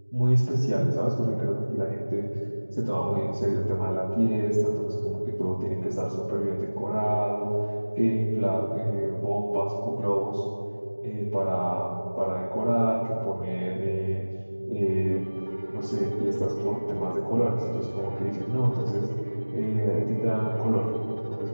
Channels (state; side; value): inverted; both; correlation -1.00